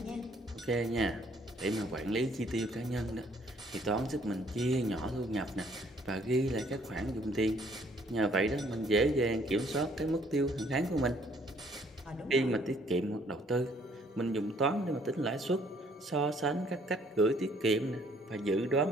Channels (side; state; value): both; normal; correlation 0.62